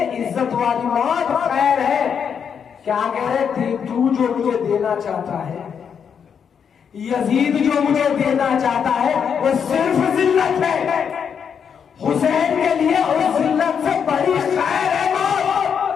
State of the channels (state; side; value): quieter; right; 7.2 dB